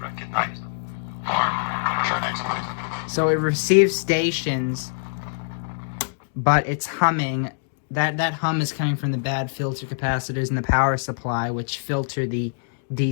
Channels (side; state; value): right; silent; digital silence